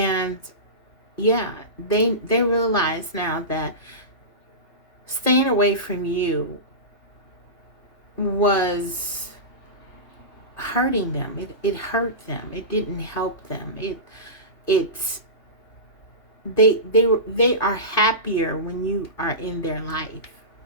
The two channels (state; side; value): late; right; 2.5 ms